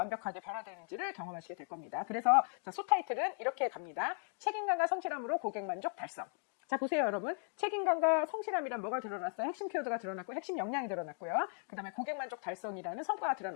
변화되는지를 경험하시게 될 겁니다. 그래서 자, 소타이틀은 이렇게 갑니다. 책임감과 성실함으로 고객 만족 달성. 자 보세요 여러분. 책임감과 성실함이란 뭐가 드러났어요? 핵심 키워드가 드러났고 핵심 역량이 드러났고요. 그 다음에 고객 만족 달성이라는 성과가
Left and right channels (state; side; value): silent; right; 53 dB below the other